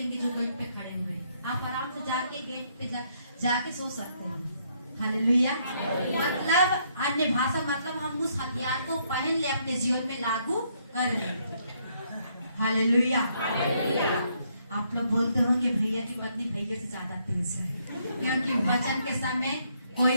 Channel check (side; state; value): both; inverted; correlation -0.72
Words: जो गेट पे खड़े हुए, आप आराम से जाके गेट पे जाके सो सकते हैं। हालेलुया। मतलब अन्य भाषा मतलब हम उस हथियार को पहन ले, अपने जीवन में लागू कर ले। हालेलुया। आप लोग बोलते होंगे भैया की पत्नी भैया से ज्यादा तेज है, क्योंकि वचन के समय